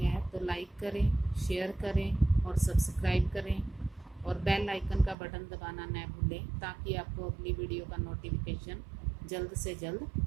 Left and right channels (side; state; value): left; drops out; at 5.2 s